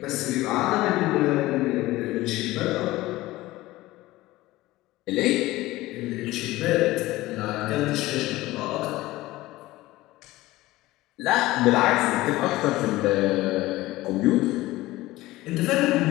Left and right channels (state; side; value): quieter; right; 18.0 dB